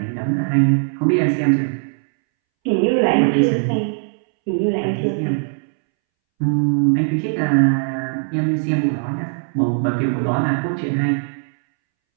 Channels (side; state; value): left; silent; 65 dB below the other